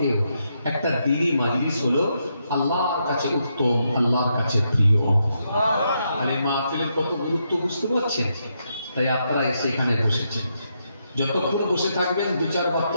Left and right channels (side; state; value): both; inverted; correlation -0.80